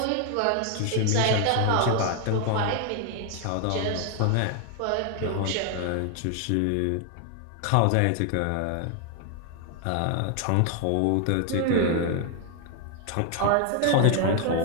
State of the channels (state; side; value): different; both; correlation 0.00